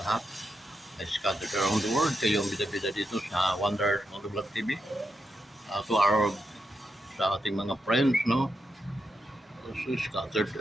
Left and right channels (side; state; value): both; normal; correlation 0.84